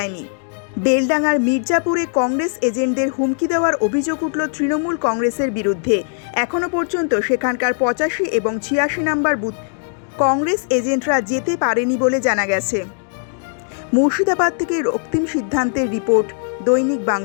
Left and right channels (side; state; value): right; silent; digital silence